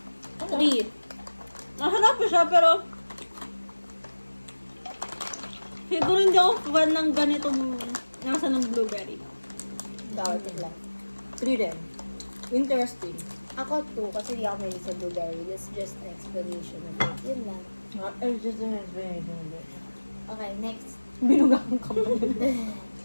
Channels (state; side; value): inverted; both; correlation -1.00